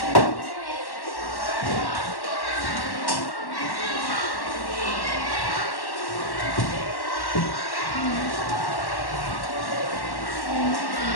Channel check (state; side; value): late; right; 1.1 ms